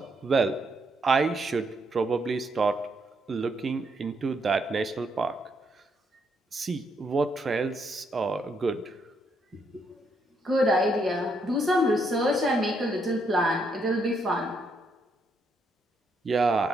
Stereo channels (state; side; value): normal; both; correlation 0.75